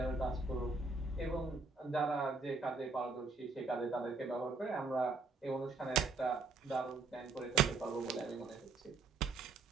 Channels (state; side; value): quieter; left; 4.0 dB